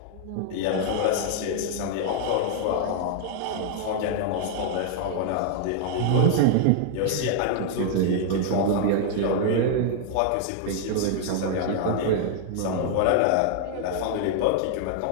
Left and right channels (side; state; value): both; different; correlation 0.00